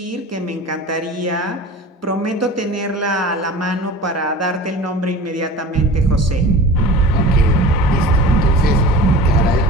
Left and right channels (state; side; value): normal; both; correlation 0.37